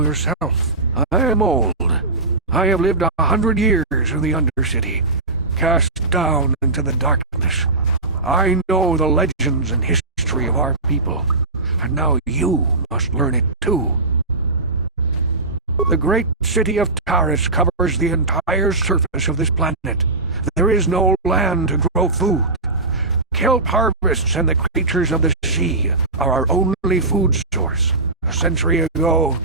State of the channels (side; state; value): left; quieter; 3.3 dB